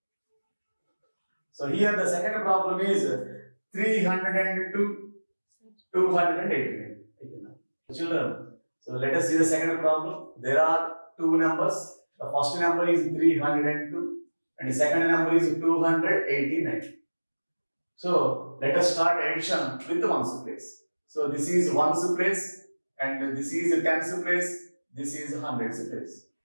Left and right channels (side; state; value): both; inverted; correlation -1.00